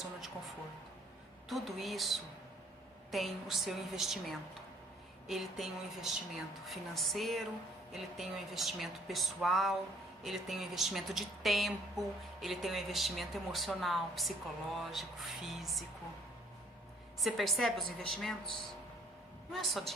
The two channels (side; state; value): both; normal; correlation 0.61